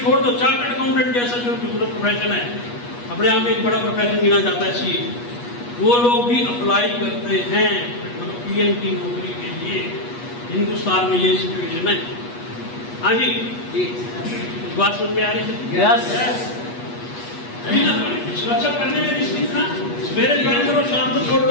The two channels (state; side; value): late; right; 8.3 ms